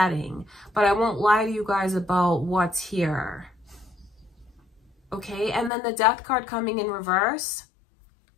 But I won't lie to you guys about what's here. Okay, and then the Death card coming in reverse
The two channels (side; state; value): right; drops out; at 5.7 s